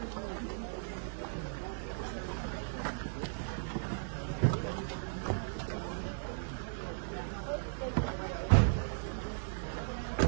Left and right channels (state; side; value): silent; left; 53 dB below the other